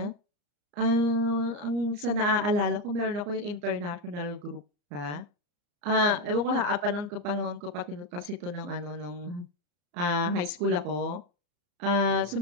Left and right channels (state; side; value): late; left; 34 ms